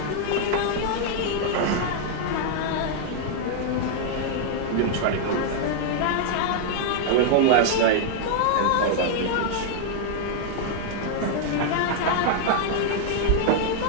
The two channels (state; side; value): different; both; correlation -0.01